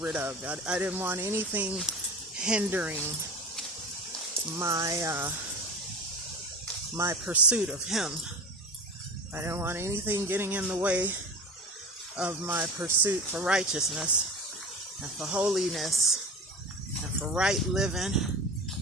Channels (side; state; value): both; normal; correlation 0.31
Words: of. I didn't want anything hindering my pursuit of Him. I didn't want anything getting in the way of my pursuit for righteousness and for holiness and for right living,